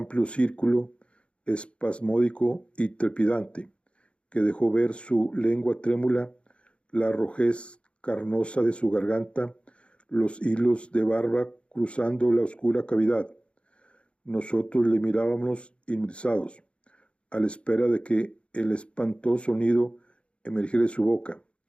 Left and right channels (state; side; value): late; right; 0.059 ms